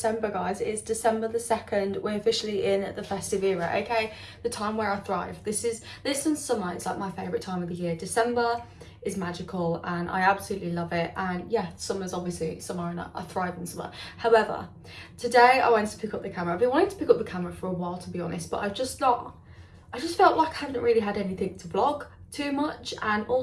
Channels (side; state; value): both; identical; correlation 1.00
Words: remember, guys, it's December the 2nd. We're officially in the festive era, okay? The time where I thrive. This and summer is like my favourite time of the year. December is magical and I absolutely love it. And yeah, summer's obviously summer and I thrive in summer. However, today I wanted to pick up the camera. I've been wanting to pick up the camera for a while, to be honest, but I just felt like I haven't really had anything to vlog too much. And